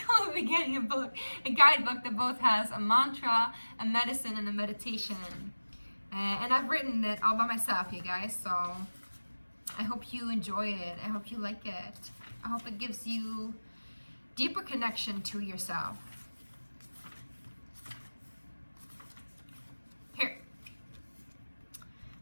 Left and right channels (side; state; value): both; inverted; correlation -1.00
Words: will be getting a guidebook that both has a mantra, a medicine, and a meditation. And I've written it all by myself, you guys. So I hope you enjoy it. I hope you like it. I hope it gives you deeper connection to yourself. Here.